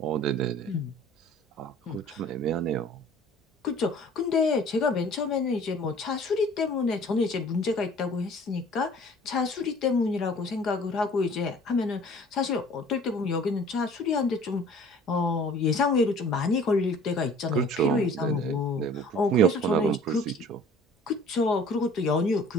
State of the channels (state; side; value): normal; both; correlation 0.50